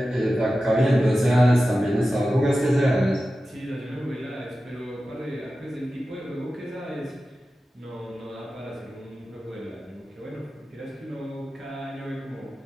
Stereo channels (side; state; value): both; normal; correlation 0.93